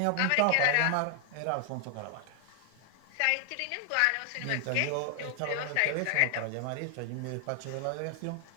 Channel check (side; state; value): both; different; correlation 0.00